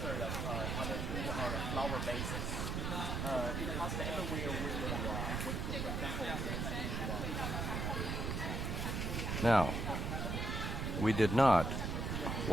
Now, we did not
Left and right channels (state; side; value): noise; right; rumble, 1 dB below the sound